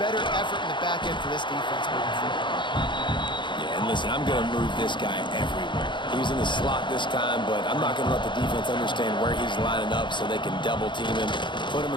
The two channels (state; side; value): late; right; 0.23 ms